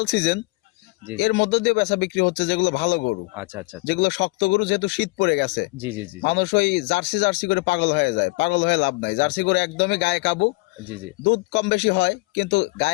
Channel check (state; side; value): quieter; right; 24.9 dB